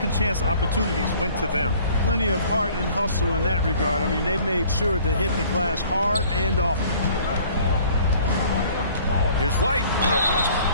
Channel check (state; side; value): inverted; both; correlation -0.53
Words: chance opportunities went to them. Plenty of heart and hustle in that regard. I mean, they made sure to hit the glass hard and often. Here's White.